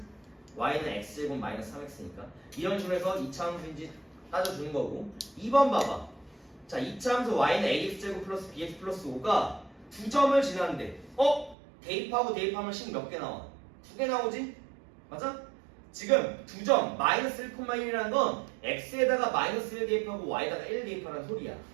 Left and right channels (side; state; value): left; drops out; at 11.6 s